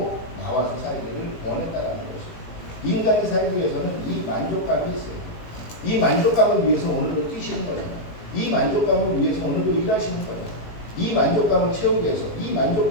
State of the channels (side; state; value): right; late; 18 ms